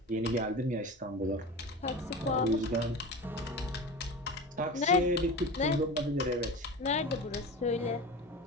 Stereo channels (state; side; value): normal; both; correlation 0.31